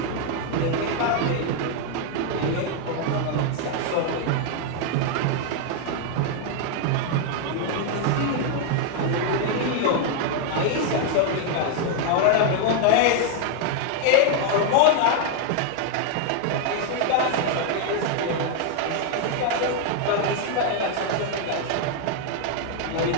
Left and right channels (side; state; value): both; different; correlation 0.00